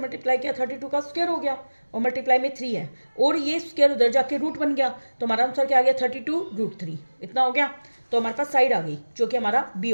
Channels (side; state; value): both; inverted; correlation -1.00